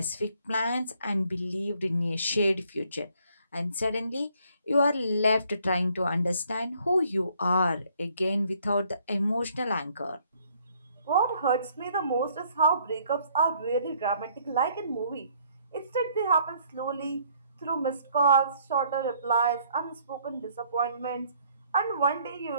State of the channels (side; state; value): both; inverted; correlation -0.64